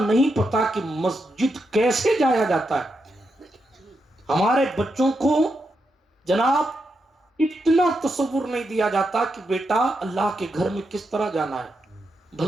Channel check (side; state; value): both; normal; correlation 0.84